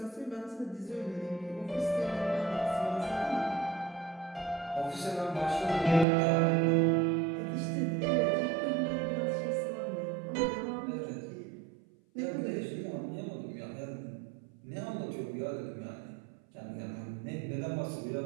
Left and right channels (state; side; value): drops out; left; at 6.1 s